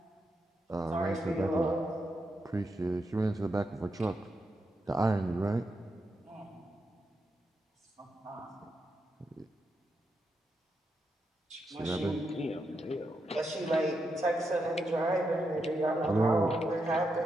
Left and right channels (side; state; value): both; normal; correlation 0.84